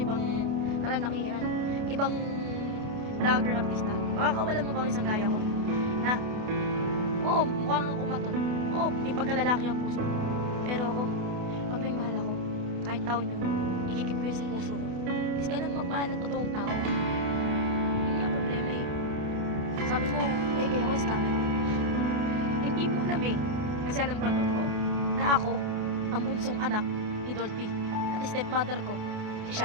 ibang kalalakihan. Ibang vlogger artista. Makakawalan mo bang isang gaya ko? Na, oo, mukha kang kumaton. Oo, may pagkalalaki ang puso. Pero ako, pag may mahal ako, kahit taon yun, ikikip ko yung sa puso ko. Kasi ganun magmahal ng totoong tao. Yun nga problema eh. Sabi mo, kaya ako scammer ako. Hindi mo alam eh. Kasi alam ko ang totoo. Na ako, ang bunsong anak ni Dolphy. At stepmother ko, si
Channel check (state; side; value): late; left; 29 ms